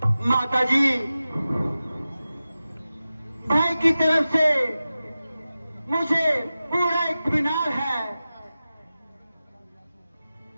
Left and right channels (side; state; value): both; inverted; correlation -0.94